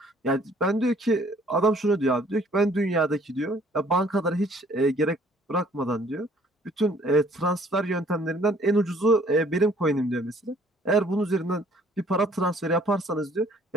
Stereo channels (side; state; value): both; normal; correlation 0.59